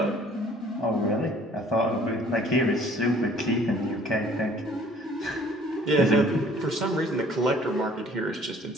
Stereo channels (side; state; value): both; normal; correlation 0.55